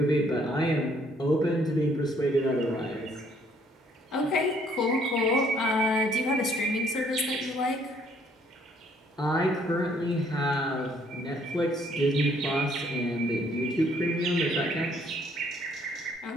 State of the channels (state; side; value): normal; both; correlation 0.64